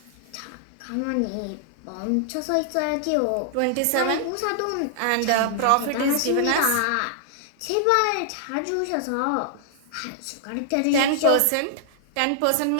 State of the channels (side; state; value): both; different; correlation -0.01